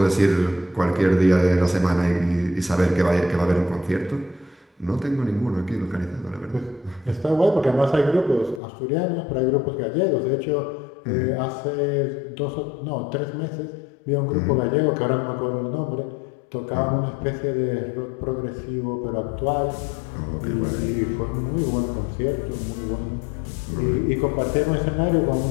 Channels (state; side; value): drops out; right; at 8.6 s